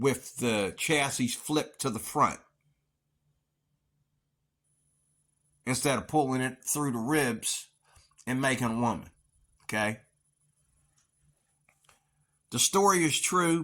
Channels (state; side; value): identical; both; correlation 1.00